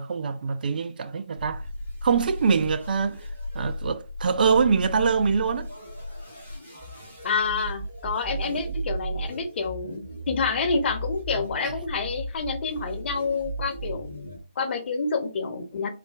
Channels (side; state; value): both; inverted; correlation -0.65